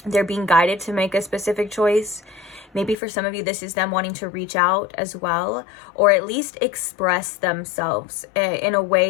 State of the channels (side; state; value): right; drops out; at 3.0 s